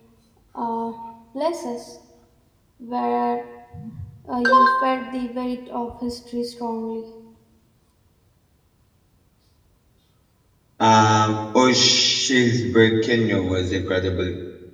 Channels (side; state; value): both; identical; correlation 1.00